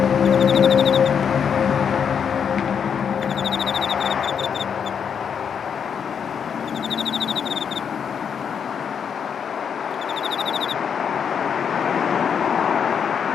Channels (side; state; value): right; quieter; 7.3 dB